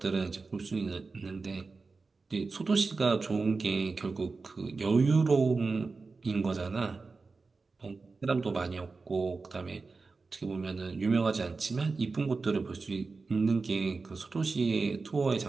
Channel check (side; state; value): left; quieter; 4.1 dB